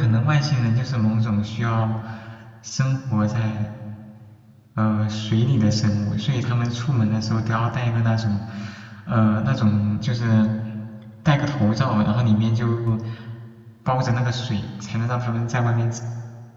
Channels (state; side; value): identical; both; correlation 1.00